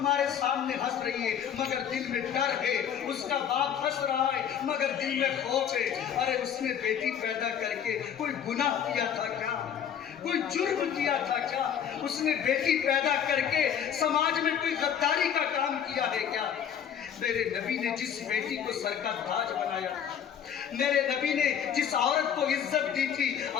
سامنے ہنس رہی ہے مگر دل میں ڈر ہے، اس کا باپ ہنس رہا ہے مگر دل میں خوف ہے۔ ارے اس نے بیٹی پیدا کر کے کوئی گناہ کیا تھا کیا؟ کوئی جرم کیا تھا کیا؟ اس نے بیٹی پیدا کر کے سماج میں کوئی غداری کا کام کیا ہے کیا؟ میرے نبی نے جس بیٹی کو سر کا تاج بنایا، میرے نبی نے جس عورت کو عزت دی تھی،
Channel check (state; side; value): quieter; right; 8.7 dB